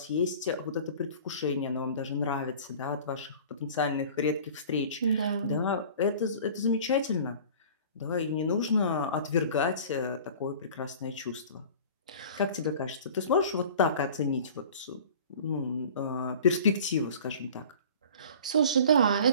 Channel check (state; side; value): inverted; both; correlation -0.43